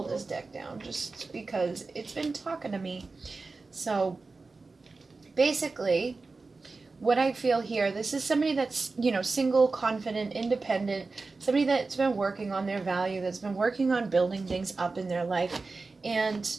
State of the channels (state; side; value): quieter; left; 3.9 dB